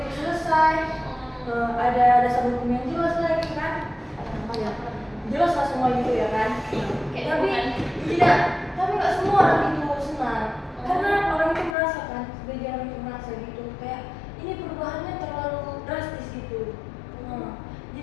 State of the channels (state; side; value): drops out; right; at 11.8 s